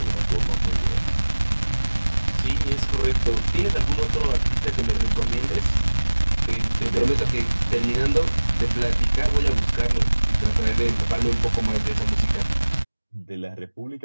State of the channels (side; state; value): both; inverted; correlation -1.00